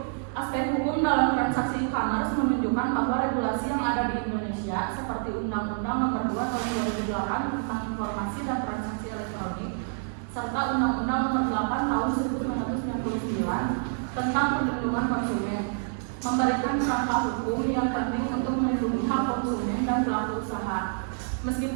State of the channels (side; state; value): left; silent; 59 dB below the other